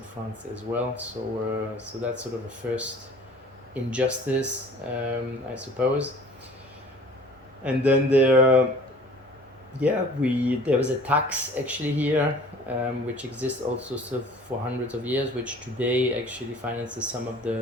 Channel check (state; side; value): normal; both; correlation 0.48